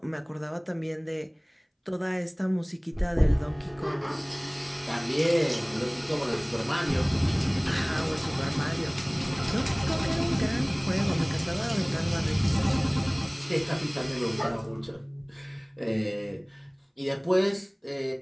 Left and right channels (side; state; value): both; identical; correlation 1.00